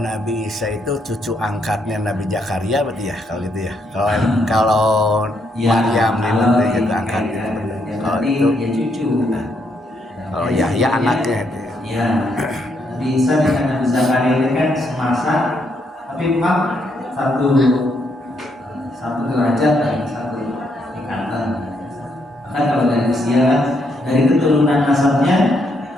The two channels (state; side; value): normal; both; correlation 0.76